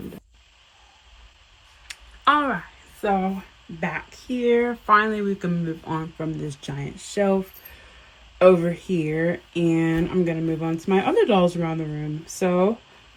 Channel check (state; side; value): identical; both; correlation 1.00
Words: done. Alright, so back here. Finally, we can move on from this giant shelf over here. And I'm going to move on to my other dolls around the room. So